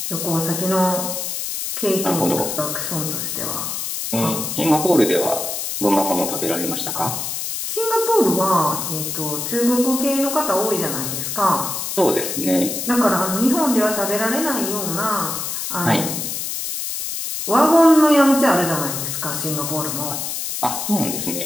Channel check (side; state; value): left; noise; hiss, 4 dB below the sound